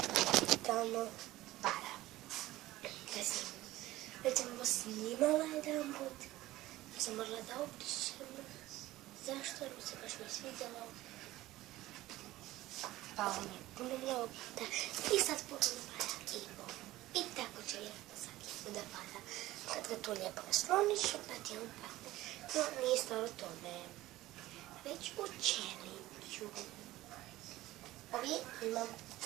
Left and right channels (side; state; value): left; quieter; 16.7 dB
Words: tamo para. Već sam ovo snimala jedan put, ja sam morala da obrišem. Zašto? Jer se baš mi svidjelo. Pao mi je puno mnogo puta i sad ponovno para i ponovno. I tako će lijepo svaki put da pada. Kad ga tu lijepo nasloniš, onda ti on padne. No, nije stvar u tome. Već u challenge-u. Ovdje imam,